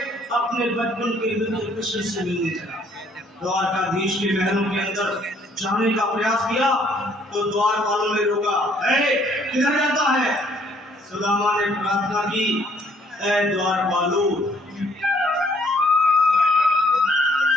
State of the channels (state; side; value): normal; both; correlation 0.63